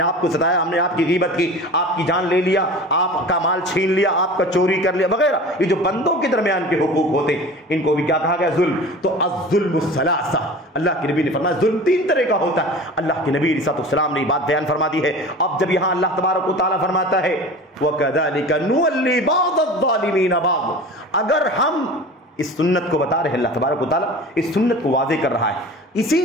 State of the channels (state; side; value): normal; both; correlation 0.37